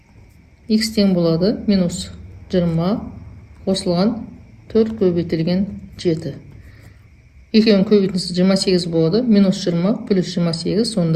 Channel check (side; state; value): both; identical; correlation 1.00